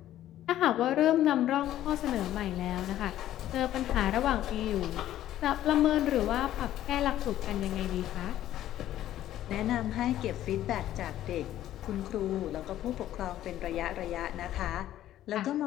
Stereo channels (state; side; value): quieter; right; 12.8 dB